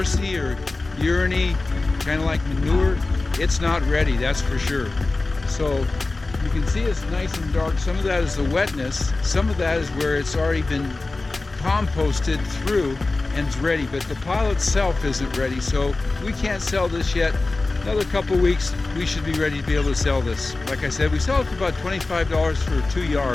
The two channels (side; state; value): right; quieter; 3.3 dB